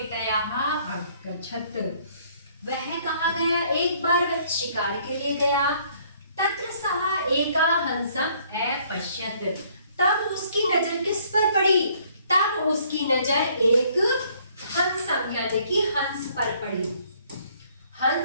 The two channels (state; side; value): inverted; both; correlation -0.62